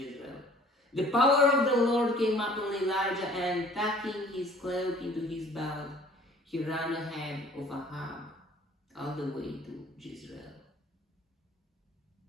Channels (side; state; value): both; normal; correlation 0.52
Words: The power of the Lord came upon Elijah, and tucking his cloak into his belt, he ran ahead of Ahab all the way to Jezreel.